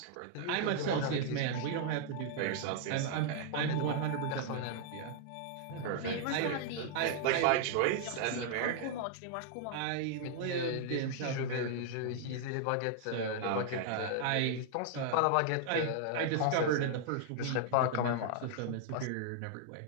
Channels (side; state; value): both; different; correlation -0.01